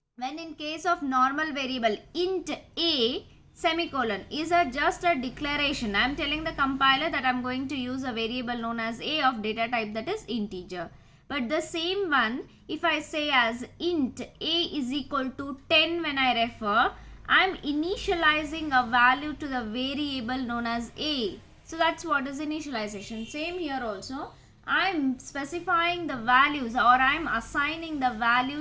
when in case of normal variable int a semicolon is just a declaration. I am telling the compiler that I am going to use a variable known as a of data type, that is integer. But the same one, if I say as int a is equal to 10 when I refer, I am initializing a value to the variable known as a. So that's what is initialization. Same here also. I am specifying the values, or I am assigning the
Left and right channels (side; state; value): both; identical; correlation 1.00